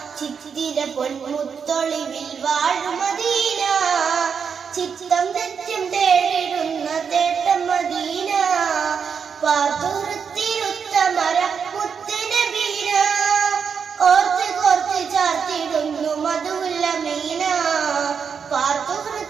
ചിത്തിര പൊന്മുത്തൊളിവിൽ വാഴും മദീന ചിത്തം നിത്യം തേടിടുന്ന തേട്ടം മദീന പാത്തുഹൃത്തിരുത്തമര മുത്തുനബീന ഓർത്ത് കോർത്ത് ചാർത്തിടുന്നു മധുവുള്ള മീന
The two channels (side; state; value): left; quieter; 6.5 dB